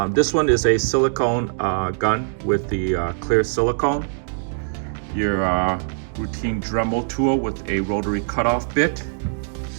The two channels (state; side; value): silent; left; digital silence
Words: This one is a silicone gun with the clear silicone. Your routine Dremel tool with a rotary cutoff bit.